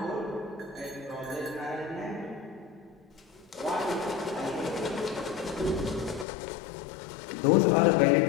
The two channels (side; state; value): right; drops out; at 6.2 s